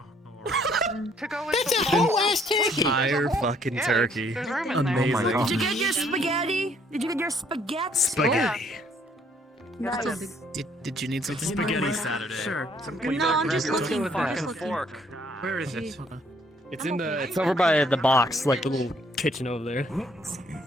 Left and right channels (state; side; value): normal; both; correlation 0.64